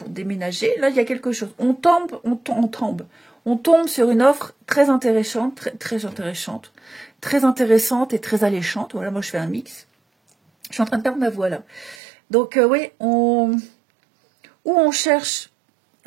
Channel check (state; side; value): drops out; left; at 12.0 s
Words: déménager. Là, il y a quelque chose. On tombe sur une offre très intéressante, très intéressante et très alléchante. Voilà, moi je fais un mix. Je suis en train de perdre ma voix là. Donc oui, où on cherche